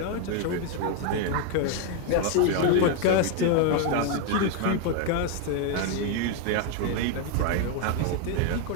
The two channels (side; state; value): both; different; correlation 0.01